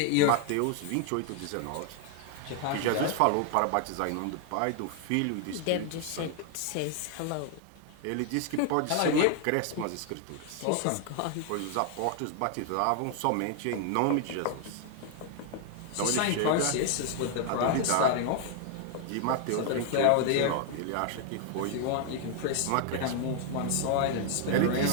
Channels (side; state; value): both; different; correlation 0.00